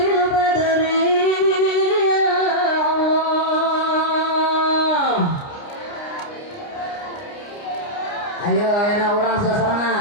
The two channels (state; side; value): late; right; 29 ms